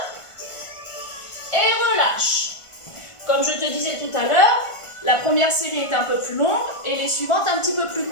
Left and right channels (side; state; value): right; late; 1.5 ms